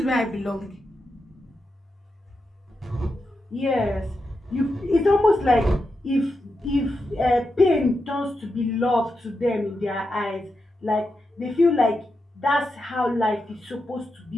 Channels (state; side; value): normal; both; correlation 0.87